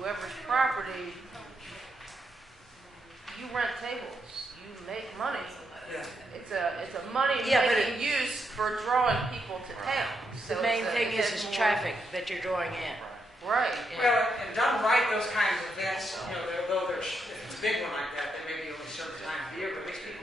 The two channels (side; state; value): both; normal; correlation 0.81